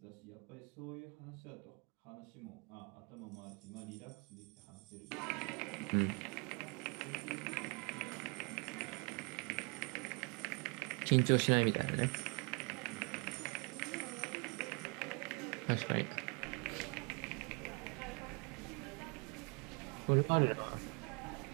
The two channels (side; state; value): left; quieter; 32.7 dB